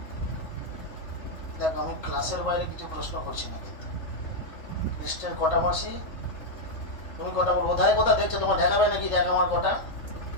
দেখ, আমি ক্লাসের বাইরে কিছু প্রশ্ন করছি না, কিন্তু কৃষ্ণের কটা মাসি? তুমি কটা বলবো? কোথায় কোথা দেখছো? তোমার দেখাবে নাকি? দেখ আমার কটা।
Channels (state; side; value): late; right; 3.4 ms